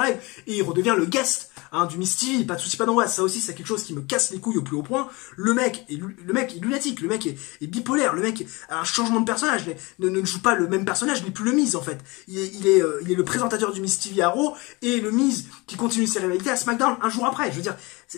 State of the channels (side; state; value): right; quieter; 24.8 dB